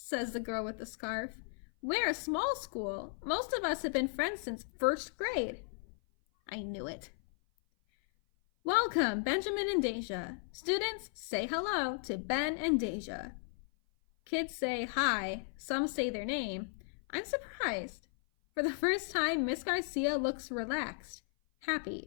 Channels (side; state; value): right; silent; 54 dB below the other